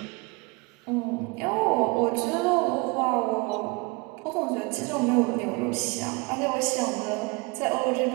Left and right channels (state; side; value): quieter; left; 27.8 dB